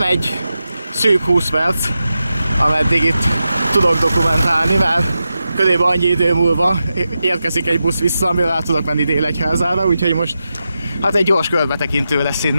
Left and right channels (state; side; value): inverted; both; correlation -0.90